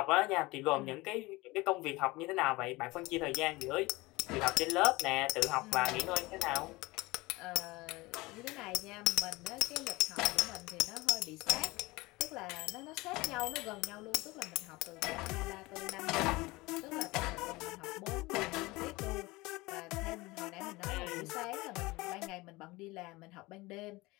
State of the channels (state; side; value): quieter; right; 21.9 dB